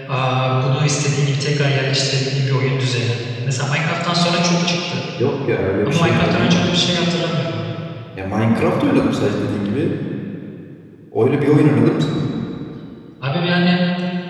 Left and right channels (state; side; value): identical; both; correlation 1.00